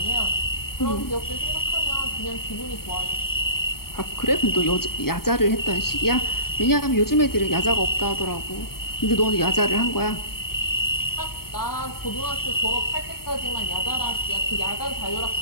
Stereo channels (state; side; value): late; right; 0.94 ms